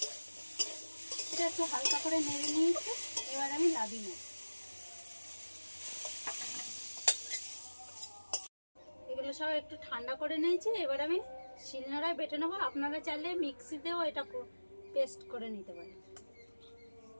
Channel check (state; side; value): inverted; both; correlation -1.00